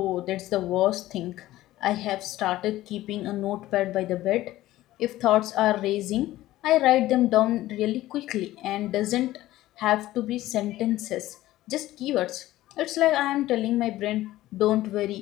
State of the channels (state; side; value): quieter; right; 15.7 dB